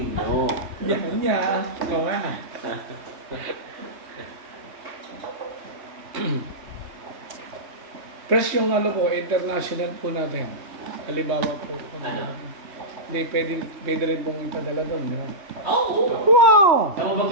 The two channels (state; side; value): late; left; 3.2 ms